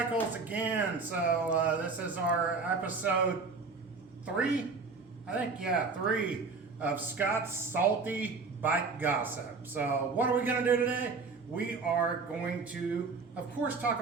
again. So this is our episode 3, I think, yeah, 3 of Scott's Salty Bike Gossip. So what are we going to do today? We are going to, of course, talk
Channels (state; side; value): quieter; left; 4.4 dB